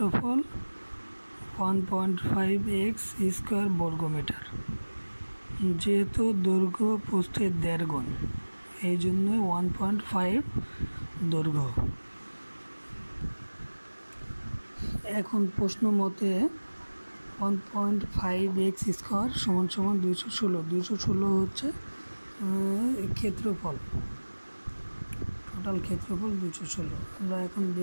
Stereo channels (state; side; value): inverted; both; correlation -1.00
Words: 1.5 x স্কয়ার বর্গমিটার। যেহেতু দৈর্ঘ্য প্রস্থের 1.5 গুণ, এই জন্য 1.5 দৈর্ঘ্য। এখন প্রশ্ন মতে 1.5 x স্কয়ার সমান 216 হচ্ছে ক্ষেত্রফল, টোটাল ক্ষেত্রফল 216। আমরা এখন